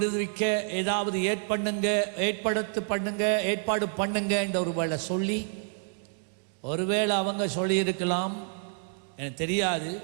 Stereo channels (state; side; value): silent; left; 59 dB below the other